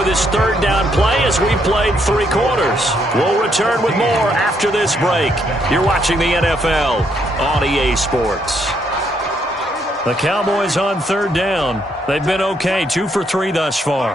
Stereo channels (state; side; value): normal; both; correlation 0.73